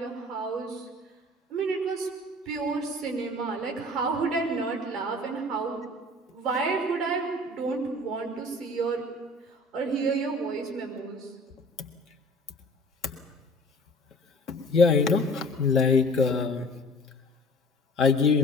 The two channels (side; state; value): both; normal; correlation 0.47